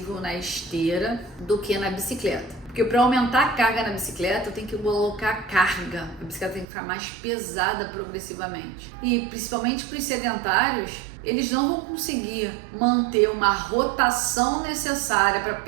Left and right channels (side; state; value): left; drops out; at 6.7 s